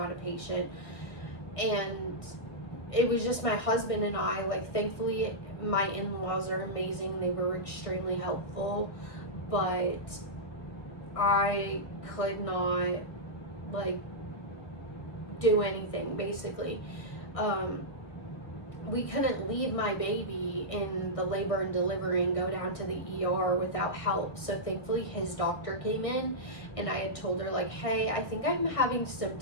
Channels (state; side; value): late; right; 1.5 ms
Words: a patient. And it was just my husband and I. Like, thankfully my in-laws are amazing, they were extremely helpful, but I could not like do anything basically. We couldn't leave my baby in the labor and delivery and go down to the ER without help. So thankfully his doctor came in, and I had told her like, hey, I think I'm having